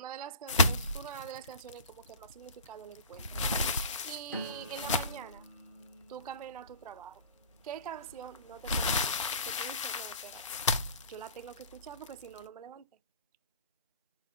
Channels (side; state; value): both; inverted; correlation -0.39